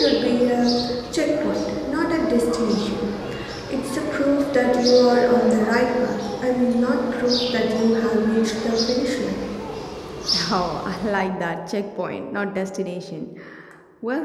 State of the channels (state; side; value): identical; both; correlation 1.00